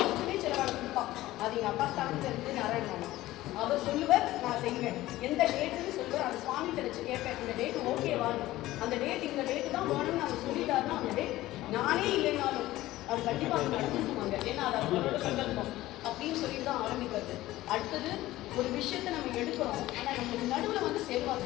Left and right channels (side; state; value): right; quieter; 16.4 dB